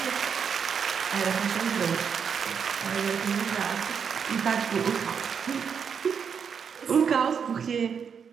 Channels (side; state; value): left; quieter; 6.9 dB